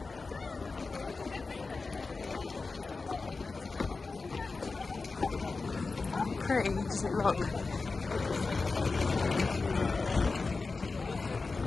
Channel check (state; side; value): quieter; right; 4.0 dB